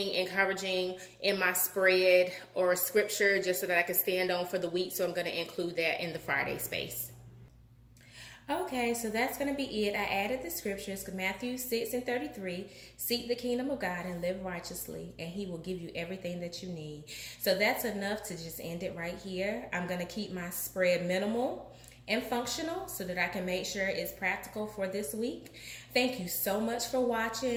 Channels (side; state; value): both; identical; correlation 1.00